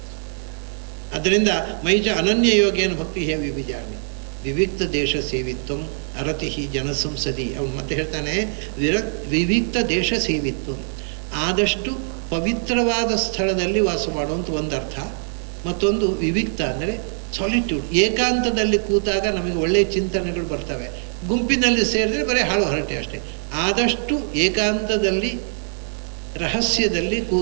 ಅದರಿಂದ ಮೈಚ ಅನನ್ಯ ಯೋಗೇನ ಭಕ್ತಿ ಹೇ ವಿವಿಚಾರಣೆ ವಿವಿಕ್ತ ದೇಶ ಸೇವಿತ್ವಂ ಅರತಿ ಜನಸಂಸದಿ. ಅವನು ಮತ್ತೆ ಹೇಳ್ತಾನೆ ವಿವಿಕ್ತ ದೇಶ ಸೇವಿತ್ವಂ, ಆದಷ್ಟು ಪವಿತ್ರವಾದ ಸ್ಥಳದಲ್ಲಿ ವಾಸ ಮಾಡುವಂಥ ಒಂದು ಅರ್ಥ. ಮತ್ತೊಂದು ವಿವಿಕ್ತ ಅಂದರೆ ಸಾಲಿಟ್ಯೂಡ್, ಏಕಾಂತದಲ್ಲಿ ಕೂತಾಗ ನಮಗೆ ಒಳ್ಳೆಯ ಚಿಂತನೆಗಳು ಬರ್ತವೆ. ಗುಂಪಿನಲ್ಲಿ ಸೇರಿದ್ರೆ ಬರೀ ಹಾಳು ಹರಟೆ ಅಷ್ಟೇ. ಆದಷ್ಟು ಏಕಾಂತದಲ್ಲಿ ರಹಸ್ಯದಲ್ಲಿ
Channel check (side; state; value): left; silent; digital silence